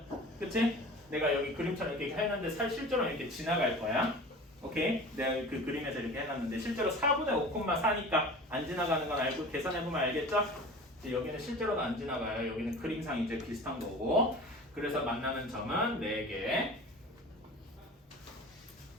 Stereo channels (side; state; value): both; normal; correlation 0.39